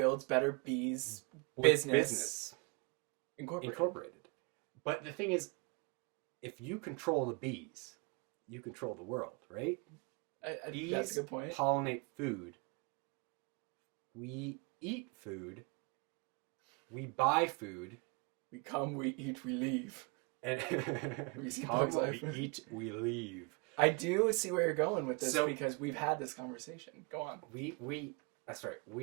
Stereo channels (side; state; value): left; quieter; 32.2 dB